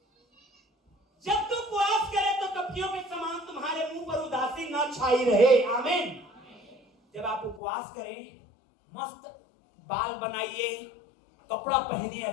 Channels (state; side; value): drops out; right; at 7.6 s